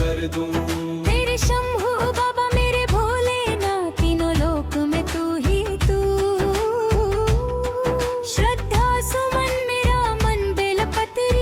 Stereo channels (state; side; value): identical; both; correlation 1.00